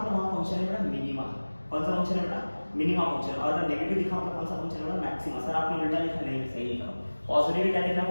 वहां फंक्शन है बेटा मिनिमा। कौन सा फंक्शन है बेटा, मिनिमा फंक्शन। और अगर नेगेटिव दिखा तो कौन सा फंक्शन है बेटा, मैक्सिमा। सर आपने उल्टा लिखा, नहीं सही लिखा। पॉजिटिव क्या देखना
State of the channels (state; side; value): inverted; both; correlation -1.00